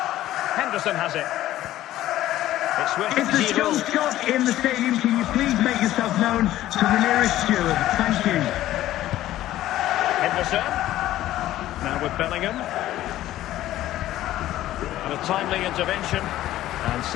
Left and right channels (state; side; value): quieter; right; 14.2 dB